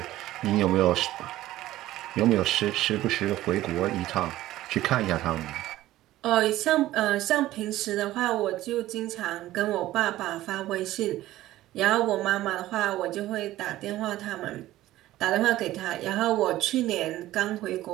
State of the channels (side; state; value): left; quieter; 15.3 dB